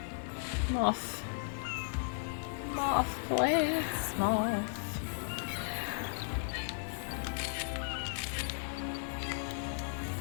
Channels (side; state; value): right; silent; 54 dB below the other